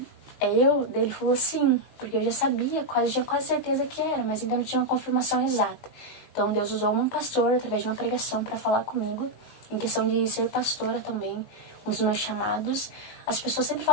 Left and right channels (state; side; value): late; right; 19 ms